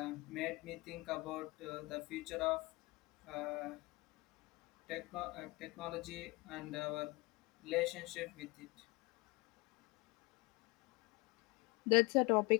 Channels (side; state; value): right; quieter; 24.4 dB